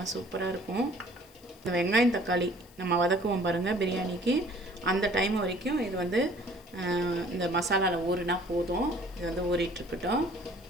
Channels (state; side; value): noise; left; hiss, 26 dB below the sound